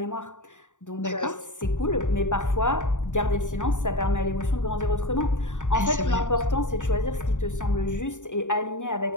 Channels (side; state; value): right; late; 0.86 ms